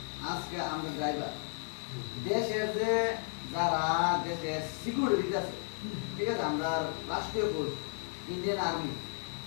আজকে আমরা ড্রাইভার দেশের যে যারা দেশের সিকিউরিটি আছে, ঠিক আছে, আমরা রাষ্ট্রীয় ফোর্স ইন্ডিয়ান আর্মি,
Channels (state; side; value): silent; right; 55 dB below the other